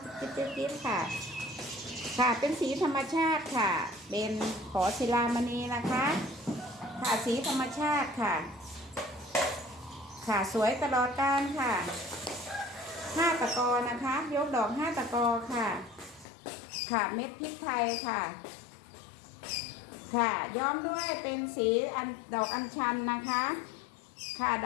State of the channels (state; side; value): drops out; right; at 16.2 s